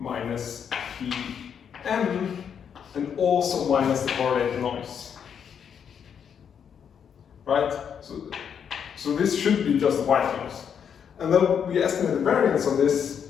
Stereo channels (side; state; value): right; quieter; 7.7 dB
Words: Pm, and also minus the correlated noise. Right? So this should be just white noise. And then we estimate the variance on this